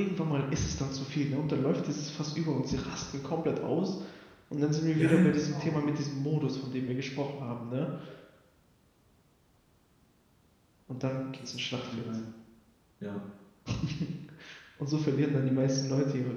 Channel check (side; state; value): both; identical; correlation 1.00